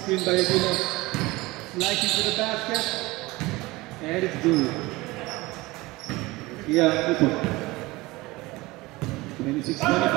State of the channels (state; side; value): quieter; left; 21.1 dB